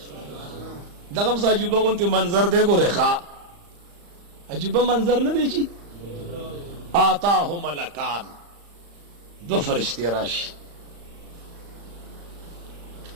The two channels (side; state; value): left; late; 35 ms